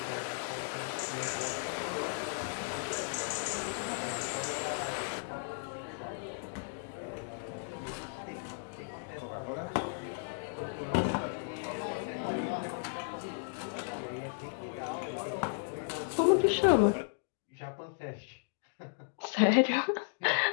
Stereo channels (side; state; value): right; silent; digital silence